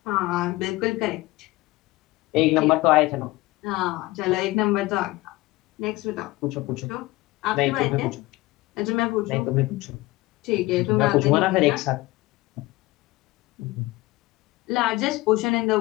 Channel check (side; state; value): right; quieter; 20.0 dB